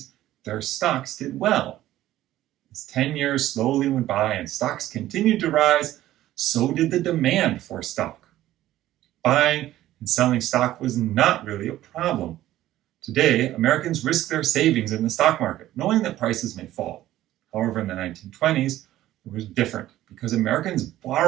their stocks did well. As 10 years slowly went by and stocks continued to rise, so did the demand for stock. Buying and selling stock was not really a problem. Today, Americans risk their savings in the stock market, knowing that prices may fall. However, in the 1920s, it was different because Americans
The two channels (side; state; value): left; quieter; 14.3 dB